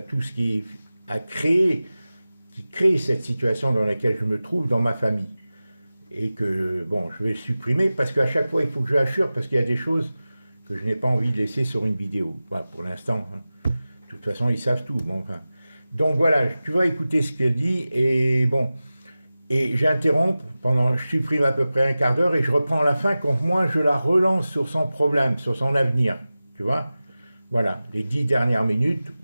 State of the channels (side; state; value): both; inverted; correlation -0.96